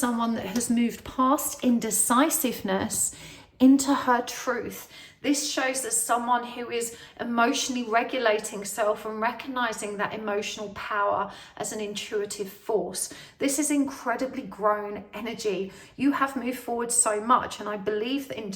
that has moved past indecisiveness into her truth. This shows us someone who is emotionally regulating self and recognizing that emotional power as an intuitive force. This is incredibly grown energy. You have moved forward so much, and I believe that in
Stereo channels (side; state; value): both; identical; correlation 1.00